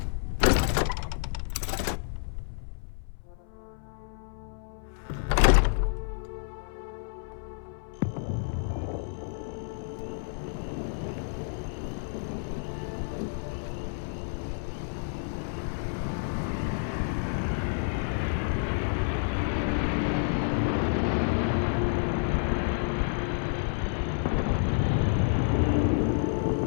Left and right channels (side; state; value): right; silent; 58 dB below the other